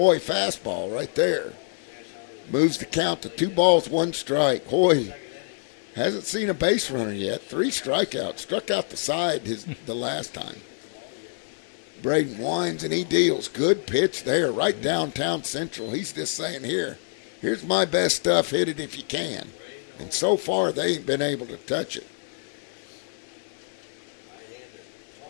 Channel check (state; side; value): silent; right; 61 dB below the other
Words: fastball right there. Moves the count to 2 balls, 1 strike. Hoy hasn't seen a base runner yet. 3 strikeouts. Struck out the side the last time. Braden winds and he deals. Good pitch there, right downtown Central. He's just saying, here's my best stuff. Hit it if you can. And so far, they ain't been able to touch it.